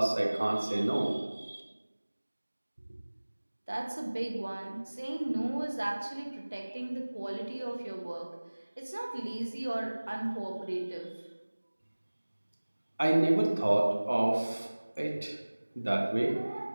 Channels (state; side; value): inverted; both; correlation -1.00